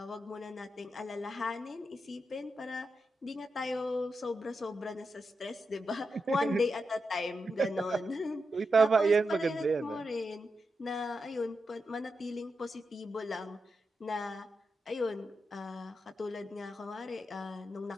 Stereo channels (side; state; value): both; normal; correlation 0.87